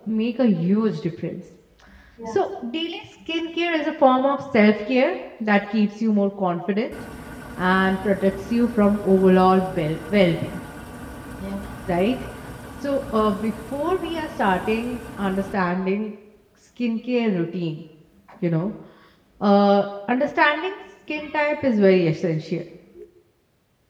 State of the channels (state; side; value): identical; both; correlation 1.00